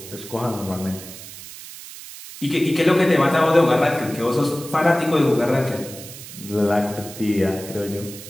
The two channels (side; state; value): right; noise; hiss, 14 dB below the sound